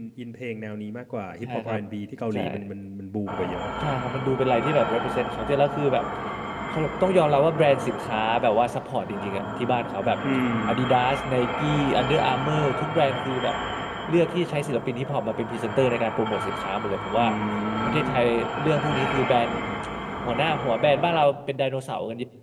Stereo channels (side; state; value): both; identical; correlation 1.00